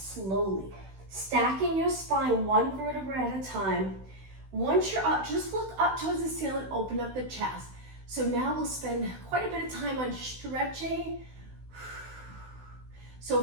Stacking your spine one vertebra at a time. Once you're up, just look up towards the ceiling, open up the chest. So now we'll spend quite a bit of time on stretching. So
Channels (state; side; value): late; left; 16 ms